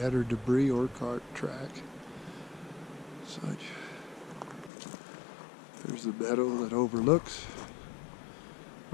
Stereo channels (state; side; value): drops out; right; at 4.7 s